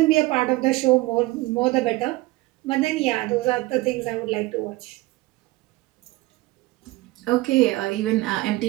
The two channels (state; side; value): quieter; left; 19.6 dB